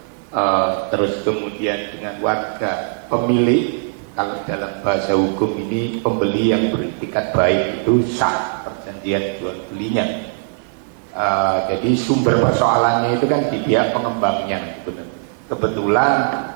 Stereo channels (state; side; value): silent; left; digital silence